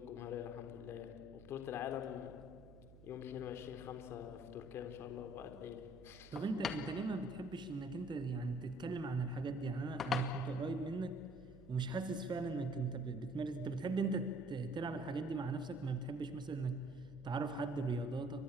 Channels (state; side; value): noise; right; hum, 19 dB below the sound